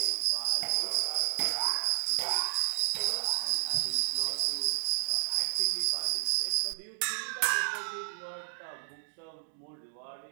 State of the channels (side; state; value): left; silent; digital silence